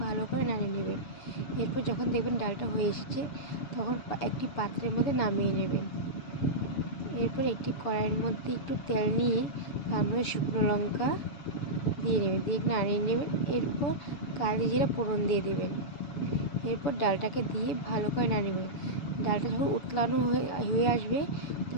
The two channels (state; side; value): late; right; 7.0 ms